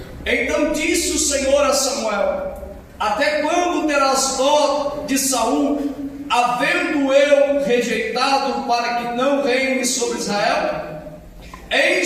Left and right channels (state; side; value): identical; both; correlation 1.00